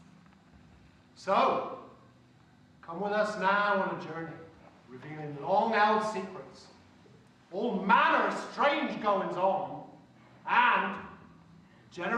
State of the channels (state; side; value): identical; both; correlation 1.00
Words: So, come with us now on a journey, revealing long-held secrets, all manner of strange goings-on, and